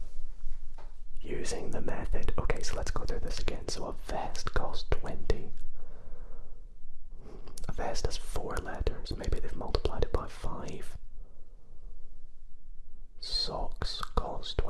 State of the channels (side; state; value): both; identical; correlation 1.00